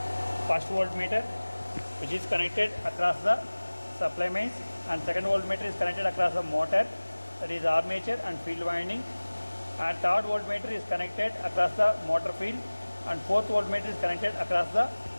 first voltmeter, which is connected across the supply mains, and second voltmeter is connected across the motor, that is armature and field winding, and third voltmeter is connected across the motor field, and fourth voltmeter is connected across the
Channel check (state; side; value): inverted; both; correlation -1.00